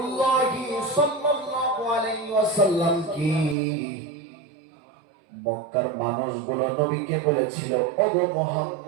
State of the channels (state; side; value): drops out; left; at 3.6 s